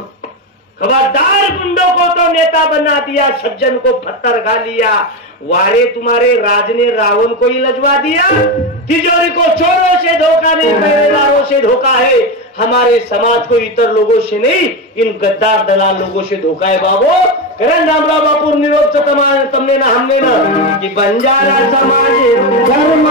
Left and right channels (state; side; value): normal; both; correlation 0.14